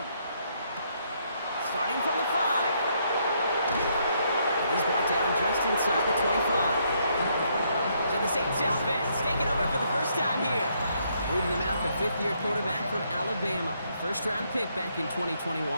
Starting from the 5. He's brought down just inside the 25. So the Saints offense taking over for the first time here. Leading them out, the fifth-year quarterback from Alabama. First-round pick back in 2021,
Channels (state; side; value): inverted; both; correlation -0.72